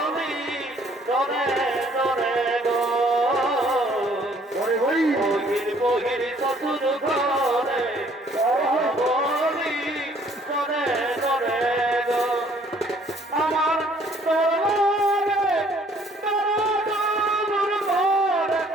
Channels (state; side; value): normal; both; correlation 0.61